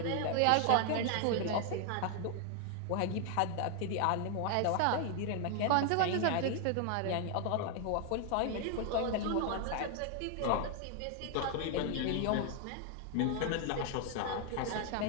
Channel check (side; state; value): both; different; correlation 0.00